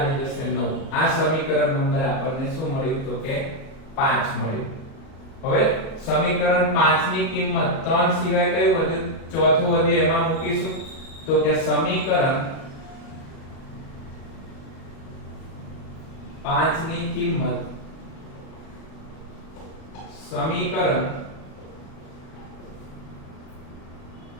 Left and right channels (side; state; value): right; late; 37 ms